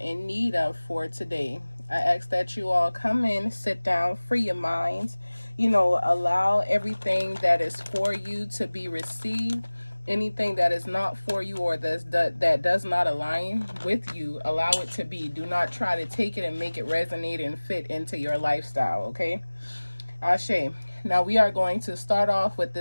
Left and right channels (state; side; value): inverted; both; correlation -1.00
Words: need of for today. I ask that you all come in, sit down, free your minds, allow everything that is for you to be received. Anything that is not for you or that does not align with you, allow it to be. Do not try to take it and make it resonate and fit into your lifestyle, okay? Ashe. Now we are going to start off with